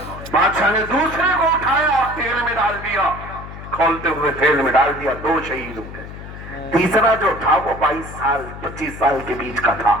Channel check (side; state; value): left; noise; hum, 12 dB below the sound